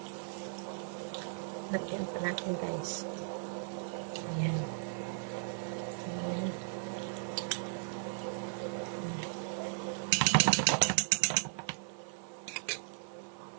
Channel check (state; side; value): silent; left; 53 dB below the other